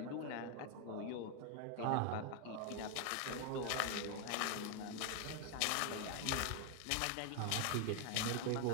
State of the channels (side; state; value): both; different; correlation 0.01